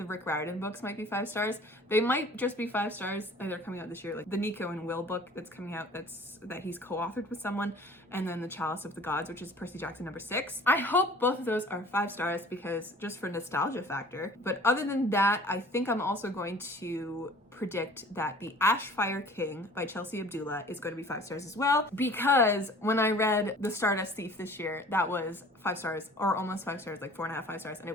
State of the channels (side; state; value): both; normal; correlation 0.48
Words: Rick Riordan books might be 5 stars. They might just be 5 stars. They're coming out this year. Like the Nico and Will book that's coming out, that he's co-authored with someone, and then the Chalice of the Gods, which is Percy Jackson #6. I hope both of those are 5 stars because just for nostalgia factor. But other than that, I think I'm also going to predict that the Ashfire King by Chelsea Abdullah is going to be 5 stars as well, because when I read The Stardust Thief this year, that was 5 stars, or almost 5 stars, like 4.5, 5 stars, and